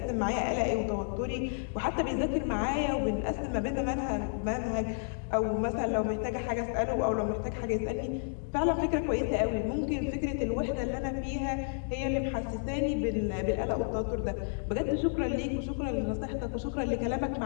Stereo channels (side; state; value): right; silent; digital silence